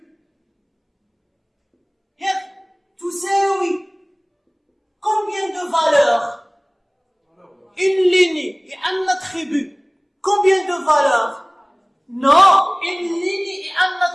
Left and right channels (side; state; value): both; identical; correlation 1.00